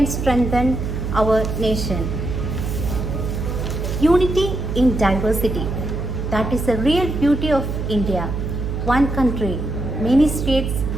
strengthen our nation. Unity in diversity. That is the real beauty of India. One country, many states,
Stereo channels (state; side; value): noise; right; hum, 3 dB below the sound